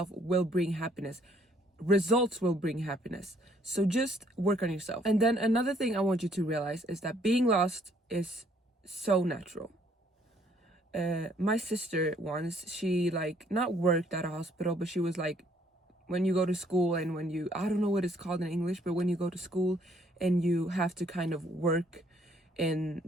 will bring happiness. Results will bring happiness. So just work on yourself. And then another thing I want you to realize is that being lost is so natural. My sister once, she like not worked at a hospital, but she was like, when you go to school and when you, I don't know what it's called in English, but when you go to school and you have to kind of work in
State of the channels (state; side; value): normal; both; correlation 0.65